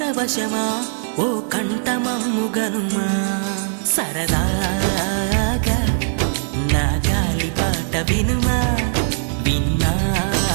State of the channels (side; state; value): left; silent; digital silence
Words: ఓ కంఠమమ్ము గనుమా. సరదాగా నా గాలి పాట వినుమా,